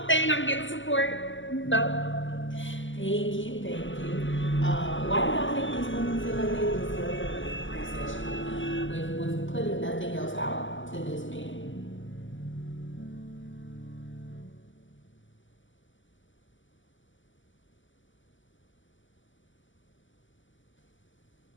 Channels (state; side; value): late; right; 0.55 ms